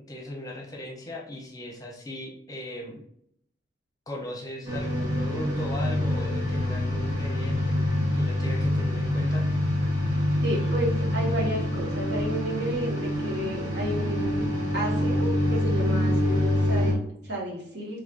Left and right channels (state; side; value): normal; both; correlation 0.77